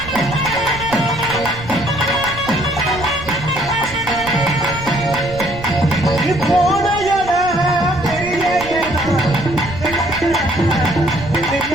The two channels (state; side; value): noise; right; rumble, 13 dB below the sound